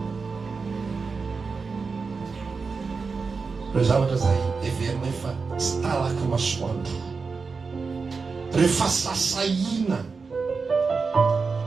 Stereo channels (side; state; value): left; quieter; 4.7 dB